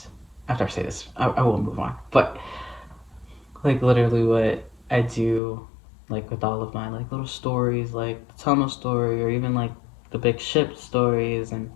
After I say this, I will move on. But like literally what I do, like with all of my like little stories, like the tunnel story, or even like the big ship stories, and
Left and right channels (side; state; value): right; drops out; at 5.4 s